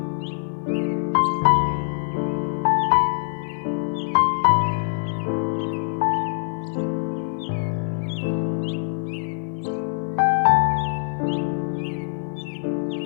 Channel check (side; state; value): right; silent; 63 dB below the other